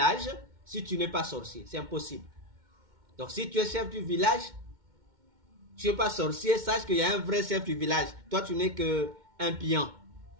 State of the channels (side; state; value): left; late; 2.1 ms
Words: si tu n'es pas sorcier. C'est impossible. Donc, si tu es chef du village, tu n'es pas sorcier, sache qu'il y a un vrai chef du village. Toi, tu n'es qu'un pion.